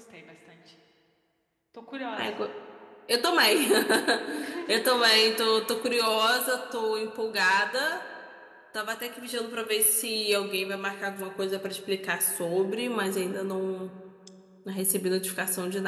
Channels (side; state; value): both; identical; correlation 1.00